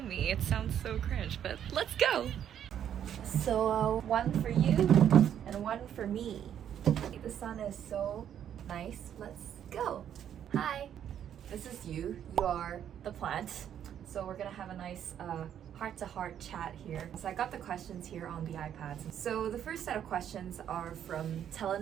me. It sounds so cringe, but let's go! So one for you and one for me. The sun is so nice. Let's go! Hi! This is you. You are the plant. So we're gonna have a nice heart-to-heart chat here. So I got the questions here on the iPads. So the first set of questions are from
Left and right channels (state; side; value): quieter; left; 9.7 dB